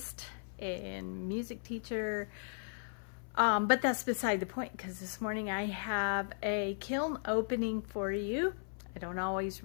and music teacher, but that's beside the point because this morning I have a kiln opening for you. I don't always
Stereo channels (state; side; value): silent; right; 54 dB below the other